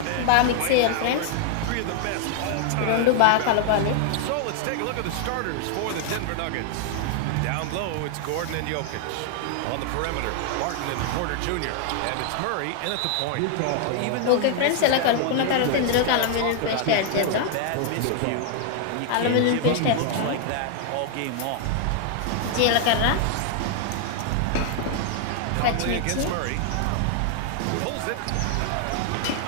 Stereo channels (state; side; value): different; both; correlation 0.00